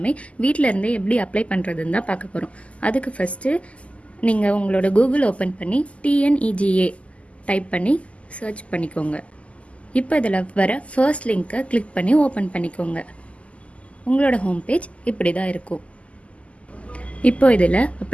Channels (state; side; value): late; right; 0.063 ms